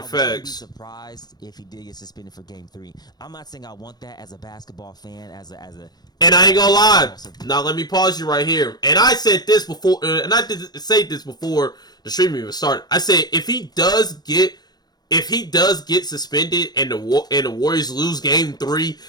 wouldn't be surprised if he did get suspended for Game 3. I'm not saying I want that as a basketball fan, as a. And I ain't gonna lie. Now let me pause you right here. And I said this before, and I did say this before the stream even started. I said if he does get suspended and the Warriors lose Game 3,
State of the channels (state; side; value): late; right; 0.19 ms